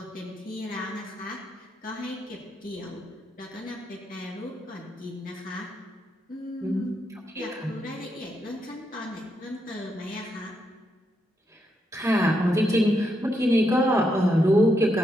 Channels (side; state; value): both; normal; correlation 0.81